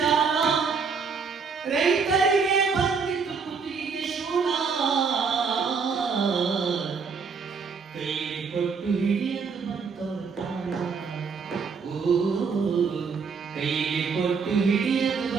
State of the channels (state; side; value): quieter; left; 5.4 dB